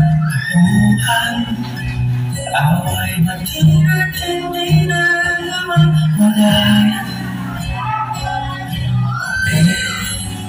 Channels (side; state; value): both; identical; correlation 1.00